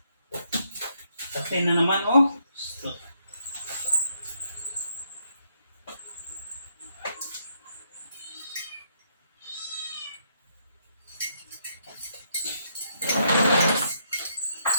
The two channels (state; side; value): inverted; both; correlation -0.75